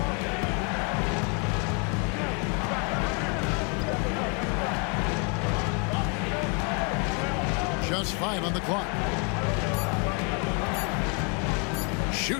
Just 5 on the clock.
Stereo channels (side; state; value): right; quieter; 35.7 dB